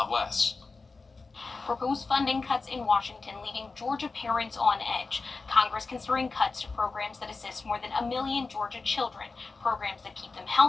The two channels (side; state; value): right; quieter; 4.0 dB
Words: less. Proposed funding cuts in Washington leaving Georgia parents on edge. Congress considering cuts to programs that assist more than 1 million Georgia children, programs that keep them